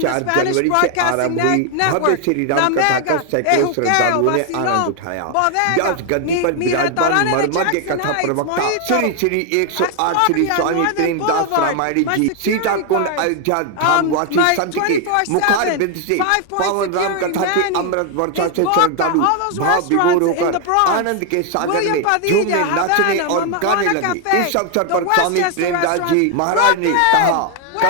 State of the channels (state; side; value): different; both; correlation 0.00